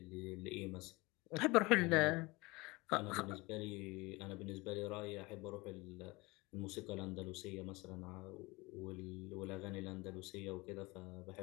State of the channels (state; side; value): quieter; right; 23.6 dB